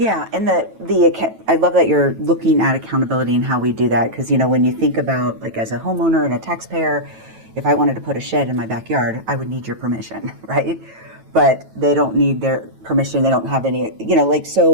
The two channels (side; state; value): left; late; 9.1 ms